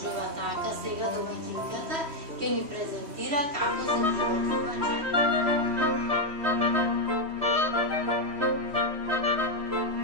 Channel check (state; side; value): late; left; 3.1 ms